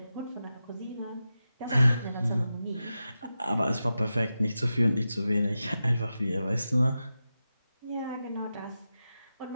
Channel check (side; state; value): both; inverted; correlation -0.91